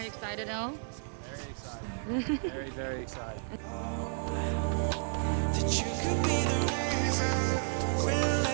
you excited, El? Very excited. Very, very excited. That you could be the reason we'll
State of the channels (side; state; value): left; silent; digital silence